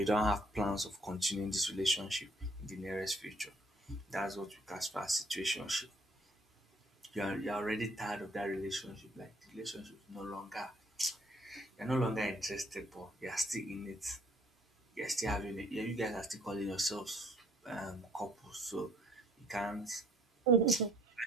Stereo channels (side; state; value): both; normal; correlation 0.62